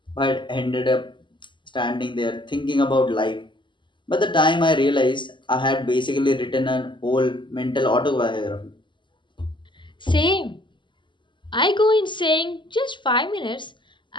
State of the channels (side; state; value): right; late; 0.23 ms